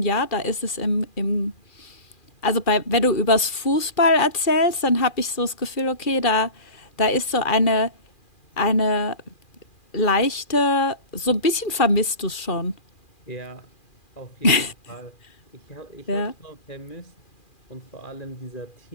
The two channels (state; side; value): late; right; 2.4 ms